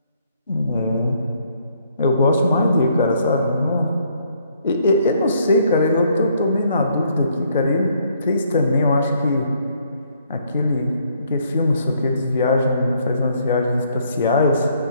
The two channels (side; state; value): both; inverted; correlation -0.68